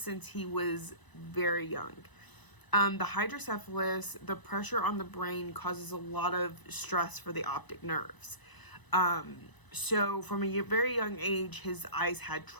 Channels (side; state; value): right; late; 1.0 ms